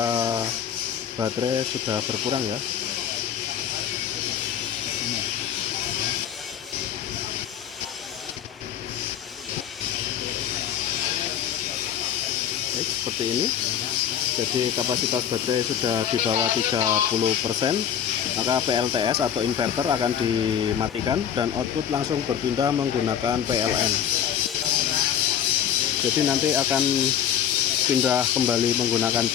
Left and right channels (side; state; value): right; quieter; 9.2 dB